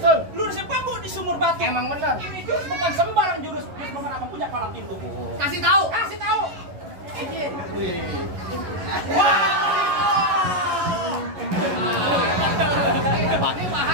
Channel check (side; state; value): left; late; 11 ms